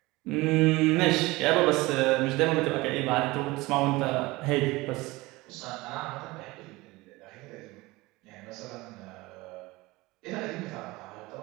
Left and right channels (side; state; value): left; quieter; 21.3 dB